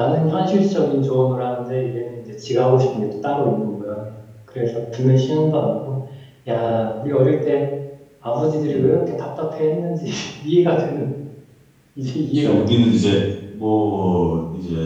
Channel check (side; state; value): both; identical; correlation 1.00